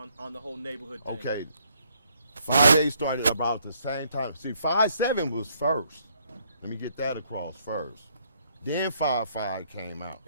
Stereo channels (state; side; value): inverted; both; correlation -0.69